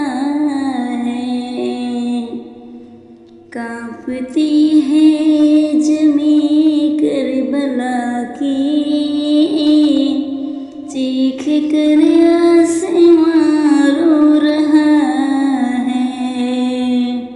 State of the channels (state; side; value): identical; both; correlation 1.00